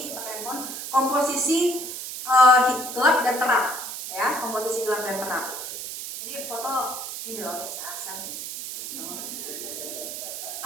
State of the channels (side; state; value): right; noise; hiss, 7 dB below the sound